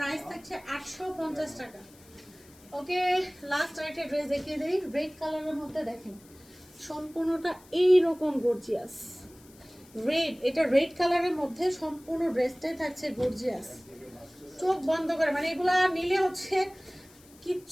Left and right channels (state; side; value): noise; left; hiss, 25 dB below the sound